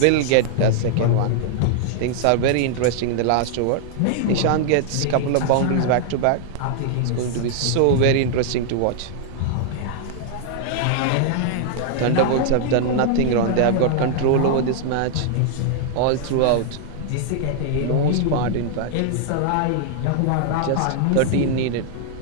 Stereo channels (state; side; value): different; both; correlation -0.01